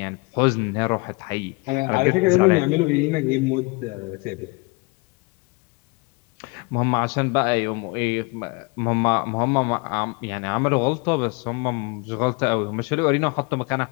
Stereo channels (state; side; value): quieter; right; 28.1 dB